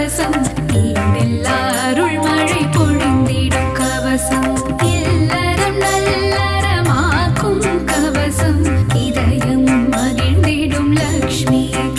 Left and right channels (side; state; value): both; identical; correlation 1.00